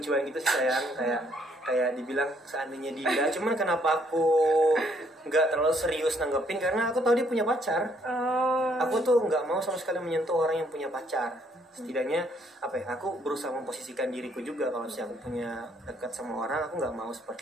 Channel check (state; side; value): normal; both; correlation 0.67